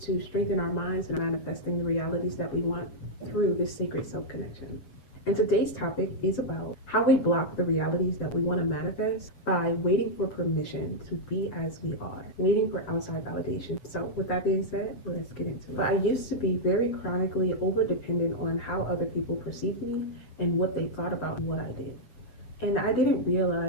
strengthen our minds and manifesting the realities that we want through this sacred self-connection. And today's topic is about how we block the realities that we want to manifest by waiting for permission to be as we are, waiting for outside validation. So with that being said, let's get into it. But I used to be very chronically over-dependent on how other people perceived me and what they thought about what I did. And I didn't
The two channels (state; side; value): late; right; 8.0 ms